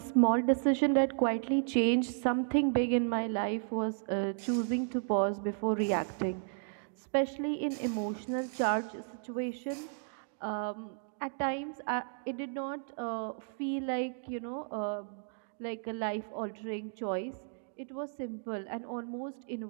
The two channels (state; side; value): silent; left; digital silence